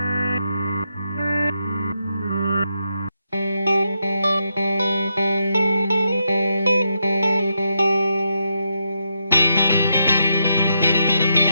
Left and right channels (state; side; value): inverted; both; correlation -0.82